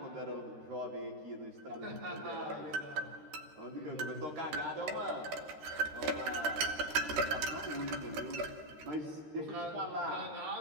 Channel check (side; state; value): left; late; 13 ms